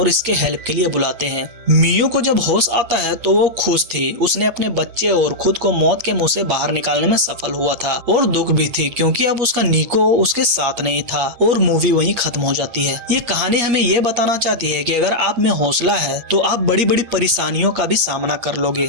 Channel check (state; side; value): late; left; 8.5 ms